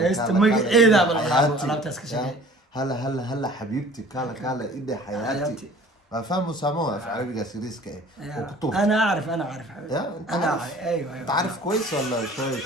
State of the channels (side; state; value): both; normal; correlation 0.48